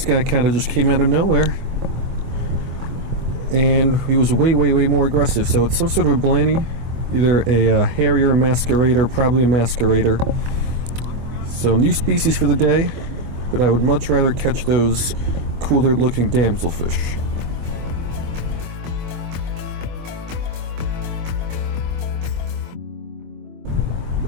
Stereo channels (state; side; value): late; left; 24 ms